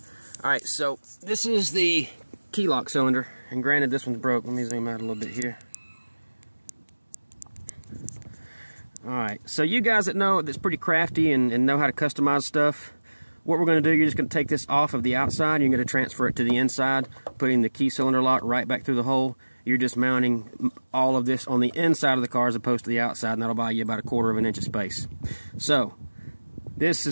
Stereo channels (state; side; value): inverted; both; correlation -1.00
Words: Alright, so this is the key lock cylinder, and granted this one's broke. Let me zoom out a little bit here. Alright, so you guys that know that's pretty crafty and know how to customize stuff, what we're going to do, you're just going to take this off of the outside, and you're going to transfer it to the inside, putting the key cylinder lock right back through the hole. You're just mounting all of this on the inside of the car as opposed to the outside, and that'll buy you about 1/4 of an inch of space. So, this